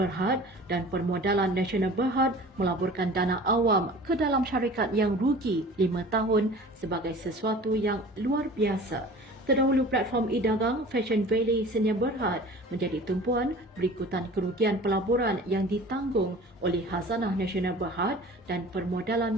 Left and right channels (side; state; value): both; normal; correlation 0.43